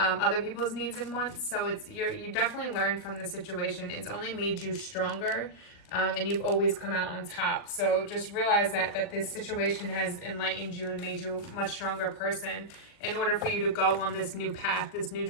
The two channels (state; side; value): late; right; 40 ms